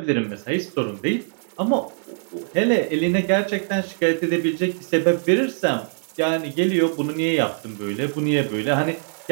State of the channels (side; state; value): left; silent; 64 dB below the other